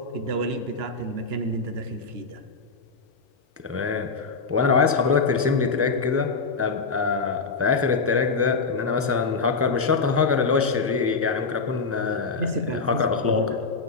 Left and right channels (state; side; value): quieter; right; 4.5 dB